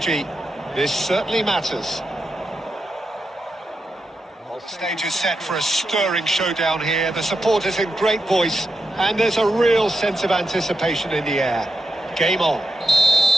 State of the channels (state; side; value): normal; both; correlation 0.86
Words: This certainly matters. The stage is set for a stirring showdown here. The supporters in great voice, and there's a real sense of anticipation in the air. Game on.